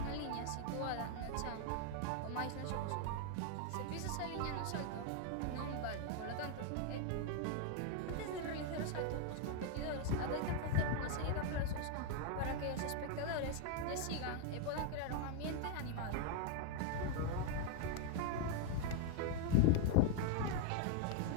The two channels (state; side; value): different; both; correlation 0.00